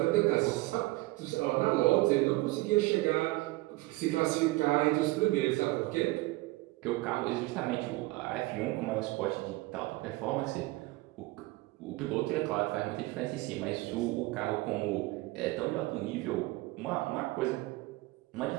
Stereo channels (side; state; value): left; quieter; 20.9 dB